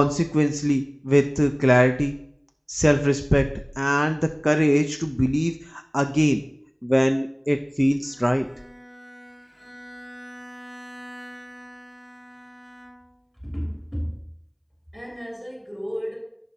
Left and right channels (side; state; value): both; identical; correlation 1.00